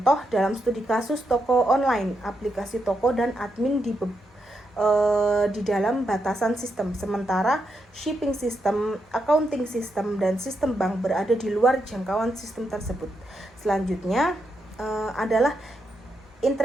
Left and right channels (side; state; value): both; normal; correlation 0.82